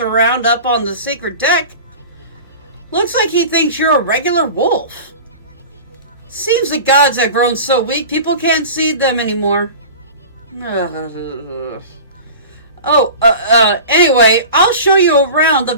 up on the secret deck looks like he thinks you're a regular wolf. Seems the gods have grown so weak, people can't see them anymore. Anyway, I'll show you around the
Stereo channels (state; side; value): inverted; both; correlation -0.36